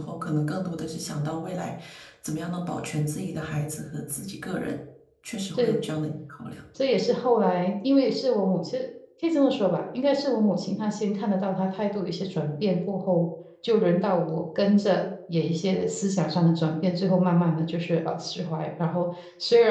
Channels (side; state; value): both; identical; correlation 1.00